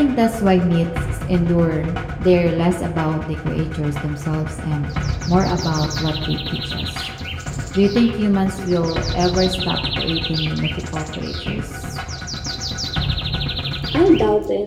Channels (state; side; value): identical; both; correlation 1.00